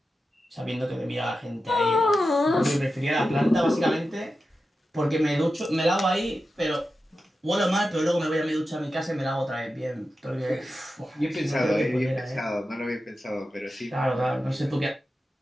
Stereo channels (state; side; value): normal; both; correlation 0.92